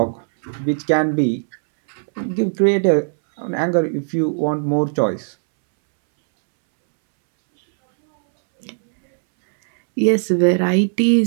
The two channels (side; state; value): left; silent; 67 dB below the other